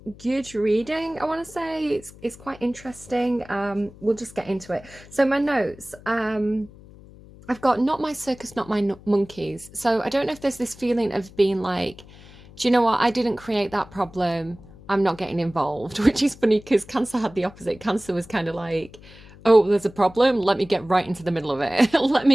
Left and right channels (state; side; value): noise; left; hum, 21 dB below the sound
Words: good reading, I want to say. It's quite interesting. We'll just get into it. So my notes, I've got not my circus, not my monkeys. So I don't know if there's this feeling of being like, do you know what, I didn't create that problem, I'm not getting involved, which is funny because Cancer had the opposite. Cancer was kind of like, oh, there's a problem, let me get right into the middle of it. Let